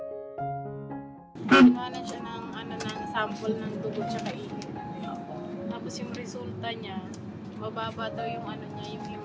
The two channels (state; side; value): identical; both; correlation 1.00